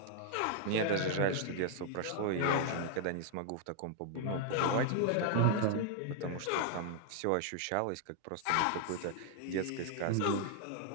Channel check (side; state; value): both; different; correlation 0.00